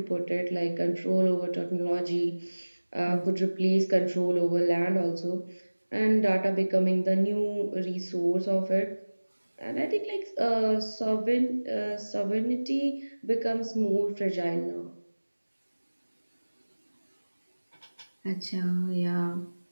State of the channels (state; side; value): inverted; both; correlation -1.00